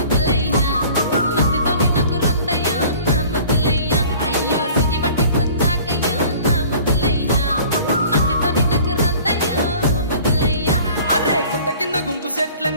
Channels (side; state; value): both; inverted; correlation -0.48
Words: మందితోని నాకు రొందయ్యో నా ముద్దులయ్యా అయ్యో చెయ్యి బట్టి కుంజాకయ్యో నా ముద్దులయ్యా మందితోని నాకు రొందయ్యో ముద్దులయ్యా అరే గుట్ట కింద గుంపు సెట్ల